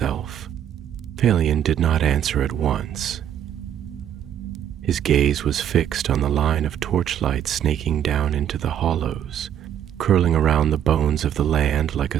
Silmarillion did not answer at once. His gaze was fixed on the line of torchlight snaking down into the hollows, curling around the bones of the land like a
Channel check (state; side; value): quieter; left; 9.9 dB